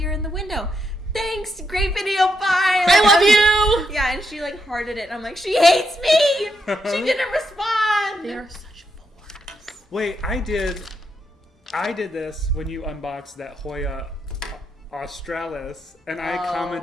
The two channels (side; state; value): both; normal; correlation 0.81